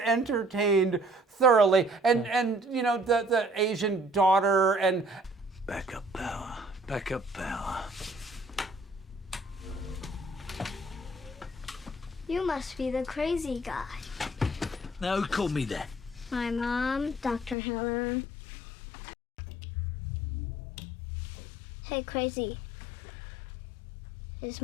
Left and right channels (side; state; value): right; drops out; at 17.6 s